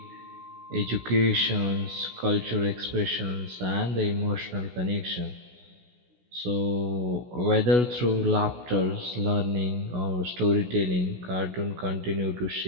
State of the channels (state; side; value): late; left; 16 ms